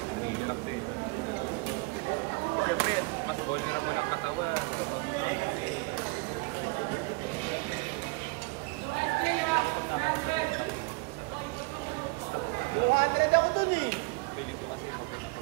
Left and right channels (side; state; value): left; quieter; 26.7 dB